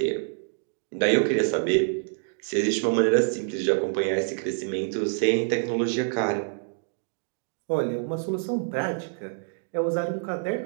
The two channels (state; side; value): silent; left; digital silence